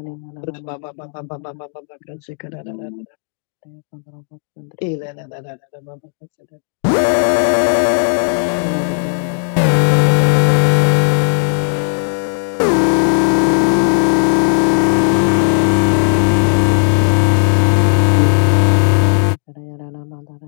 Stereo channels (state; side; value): silent; right; 57 dB below the other